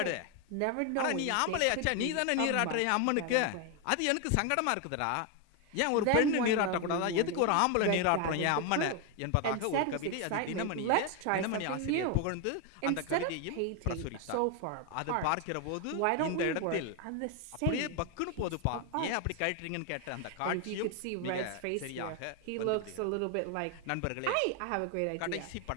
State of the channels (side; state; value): both; different; correlation 0.01